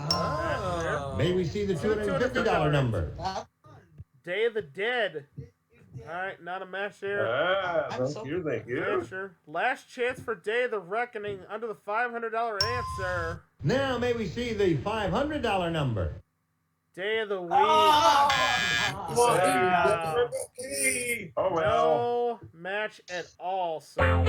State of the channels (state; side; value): identical; both; correlation 1.00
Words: May we see the $250 number? Day of the Dead. All right, not a match there. Thank you. Sure. Last chance for Day of the Reckoning under the $500 answer. Now may we see the $500 number? Day of the Week. Oh, well. No match at all, so.